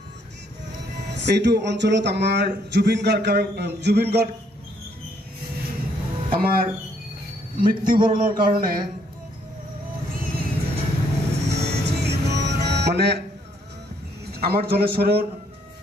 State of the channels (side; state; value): both; normal; correlation 0.69